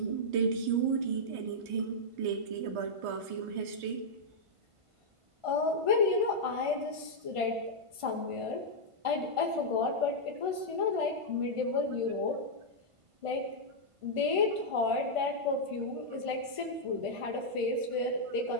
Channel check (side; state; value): left; late; 1.5 ms